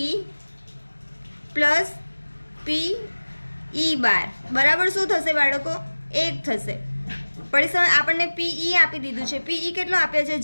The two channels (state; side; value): inverted; both; correlation -1.00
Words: પ્લસ PE12 બરાબર શું થશે બાળકો? 1 થશે. પછી આપણને PE આપી દીધું છે. PE કેટલો આપ્યો છે?